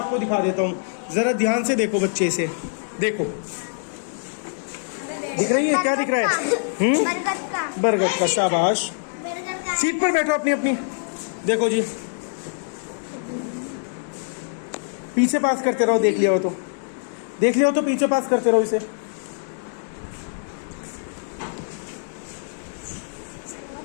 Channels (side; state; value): right; silent; digital silence